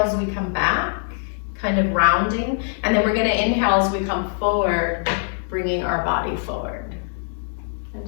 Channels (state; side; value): silent; right; digital silence